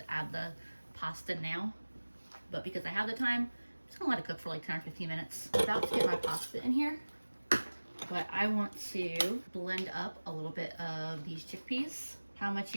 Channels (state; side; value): inverted; both; correlation -1.00